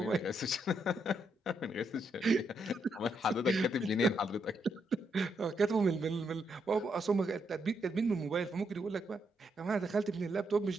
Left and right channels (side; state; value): both; normal; correlation 0.78